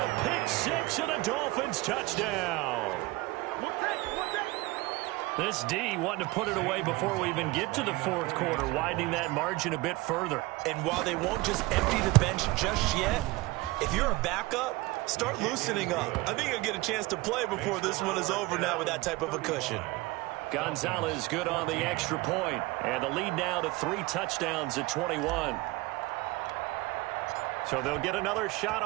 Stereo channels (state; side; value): quieter; left; 21.3 dB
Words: pick six and a Dolphins touchdown. This D wanting to put it away before we even get to the fourth quarter, widening that margin a bit further. And while they won't just empty the bench just yet, if you're a backup, start loosening up. I think you'll get a chance to play before this one is over now with that type of a cushion. Gonzalez good on the extra point, and the lead now to 3 touchdowns at 21. So they'll get another shot